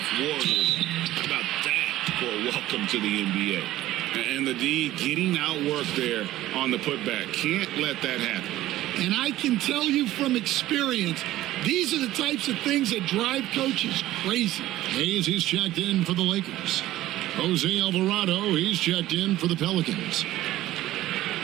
Warriors. How about that for a welcome to the NBA? And the D getting outworked there on the putback. Can't let that happen. And I can tell you from experience, these are the types of things that drive coaches crazy. Hayes, he's checked in for the Lakers. Jose Alvarado, he's checked in for the Pelicans.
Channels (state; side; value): quieter; left; 15.2 dB